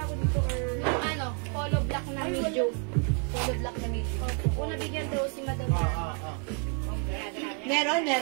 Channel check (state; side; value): quieter; left; 39.7 dB